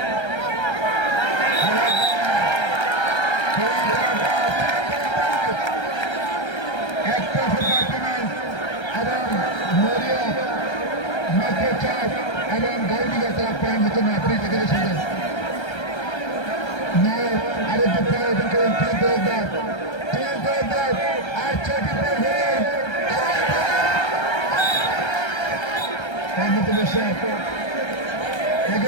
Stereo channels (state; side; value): late; right; 1.3 ms